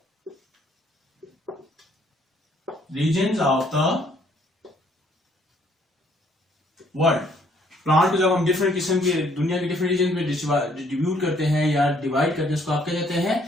regions of the world. Plant को जब हम डिफरेंट किस्म के दुनिया के डिफरेंट रीजन में डिस्ट्रीब्यूट करते हैं या डिवाइड करते हैं, उसको आप क्या कहते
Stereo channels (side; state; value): both; normal; correlation 0.65